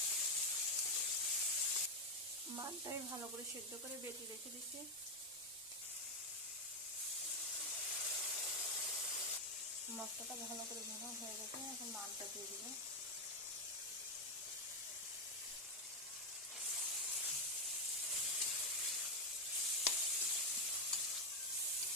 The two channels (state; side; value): normal; both; correlation 0.05